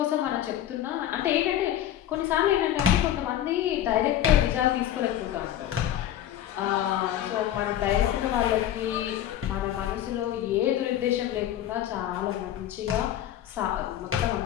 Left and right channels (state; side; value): quieter; right; 11.6 dB